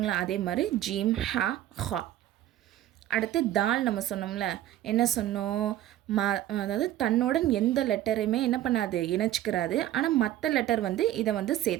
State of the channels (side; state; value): left; quieter; 13.2 dB